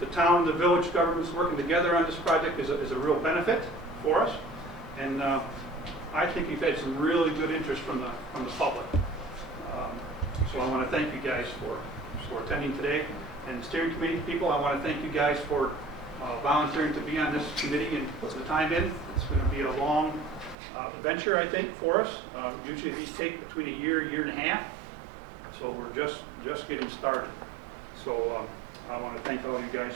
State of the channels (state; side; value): drops out; left; at 20.6 s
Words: the town and the village governments working together on this project is a real benefit for us, and I think we've had some really good interest from the public. So I want to thank you guys for attending today. And the steering committee people, I want to thank you guys for volunteering to be on this committee and putting the time in. It's going to be a long venture, I think, for us. Usually these take between a year and a half. So we're just getting started. So I want to thank all you guys